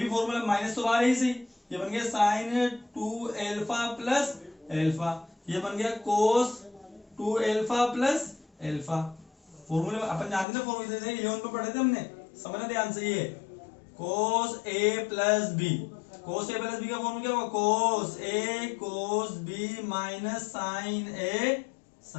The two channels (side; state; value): right; drops out; at 10.5 s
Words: फॉर्मूला माइनस तो बाहर ही सही, ये बन गया साइन 2 एल्फा प्लस एल्फा, ये बन गया कोस 2 एल्फा प्लस एल्फा। फॉर्मूले अपन जानते ना, फॉर्मूले 11 पे पढ़े थे हमने, समझना ध्यान से, ये कोस ए प्लस बी, कोस ए प्लस बी का फॉर्मूला क्या होगा, कोस ए कोस बी माइनस साइन ए